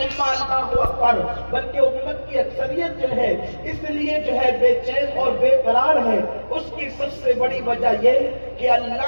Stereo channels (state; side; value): inverted; both; correlation -1.00